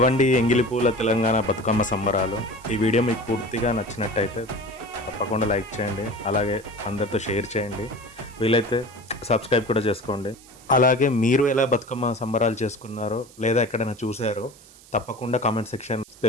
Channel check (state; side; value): noise; right; hiss, 23 dB below the sound